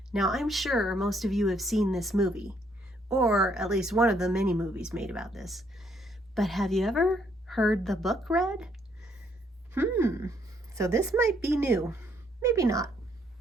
Now, I'm sure most of you have seen this movie, or at least one of the many movies made about this. But have you ever heard the book read? So this might be new. Maybe not,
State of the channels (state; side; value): normal; both; correlation 0.69